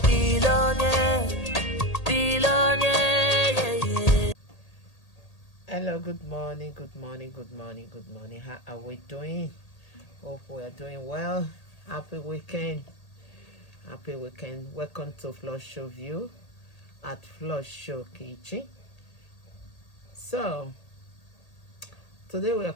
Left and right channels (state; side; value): late; right; 1.8 ms